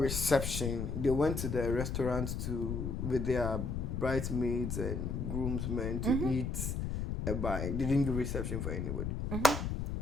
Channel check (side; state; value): left; noise; rumble, 2 dB below the sound